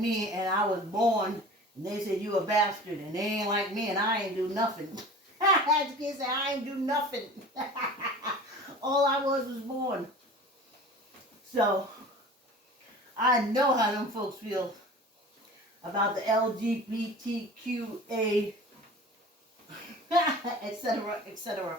and I was born, and they said you a bastard, and they ain't like me, and I ain't do nothing. As the kid said, I ain't do nothing. All I was born. So, I know how them folks feel about the LGBTQA, etc.,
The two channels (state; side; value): normal; both; correlation 0.39